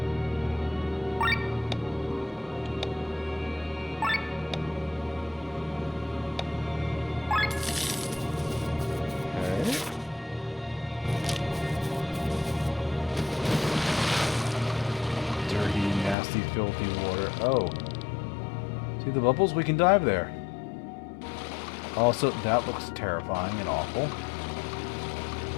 Filthy water. Oh. See the bubbles? We can dive there. Also, that looks terrifying and awful.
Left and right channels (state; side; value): drops out; right; at 16.2 s